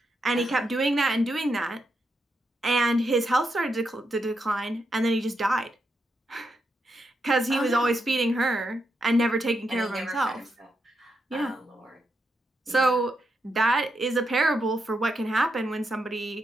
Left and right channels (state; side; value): normal; both; correlation 0.83